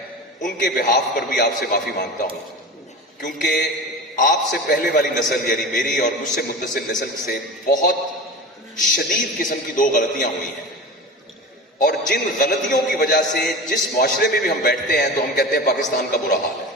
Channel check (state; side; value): normal; both; correlation 0.31